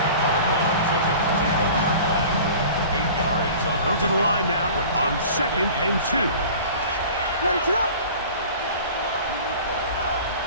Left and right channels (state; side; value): inverted; both; correlation -0.42